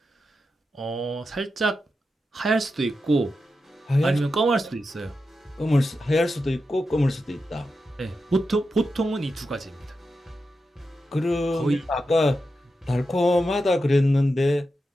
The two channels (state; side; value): normal; both; correlation 0.89